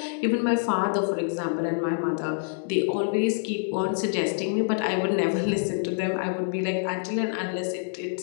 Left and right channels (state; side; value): silent; right; digital silence